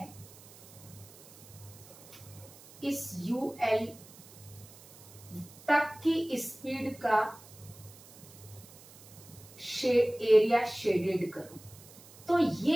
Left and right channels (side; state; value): right; noise; hiss, 20 dB below the sound